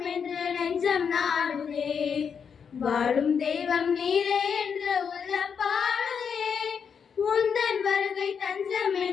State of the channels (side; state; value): right; quieter; 6.7 dB